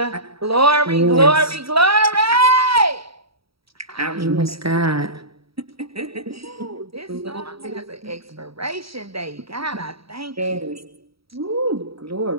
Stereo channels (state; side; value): late; left; 0.76 ms